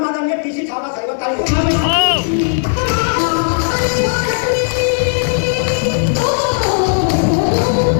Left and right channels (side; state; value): right; silent; digital silence